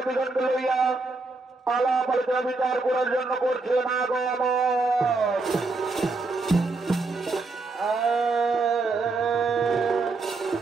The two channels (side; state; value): left; quieter; 3.6 dB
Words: লইয়া আলাপ আলোচনা বিচার করার জন্য করছেন আগমন।